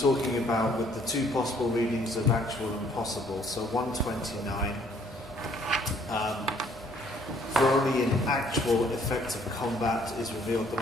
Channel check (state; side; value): normal; both; correlation 0.62